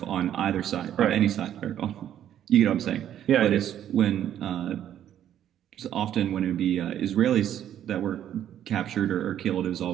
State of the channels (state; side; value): quieter; left; 10.7 dB